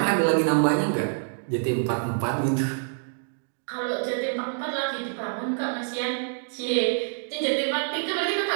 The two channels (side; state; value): left; silent; digital silence